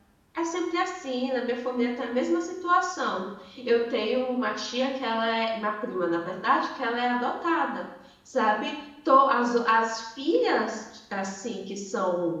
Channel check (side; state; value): both; identical; correlation 1.00